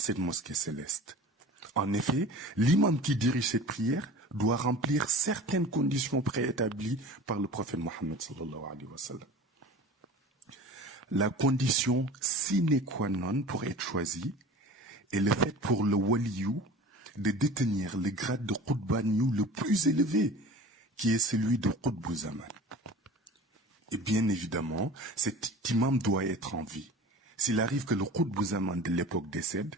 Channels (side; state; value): both; normal; correlation 0.39